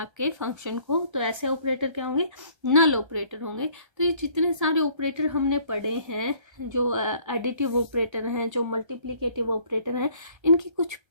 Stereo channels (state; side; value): late; left; 1.3 ms